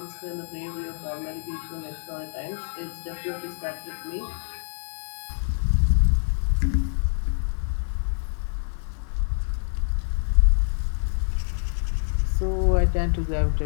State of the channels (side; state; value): right; silent; digital silence